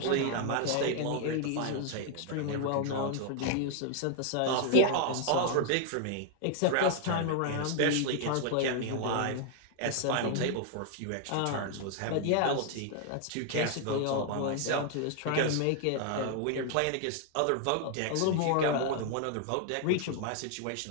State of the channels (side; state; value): both; different; correlation 0.00